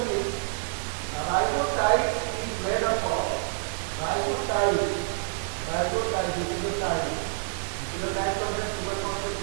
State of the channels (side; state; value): left; silent; 60 dB below the other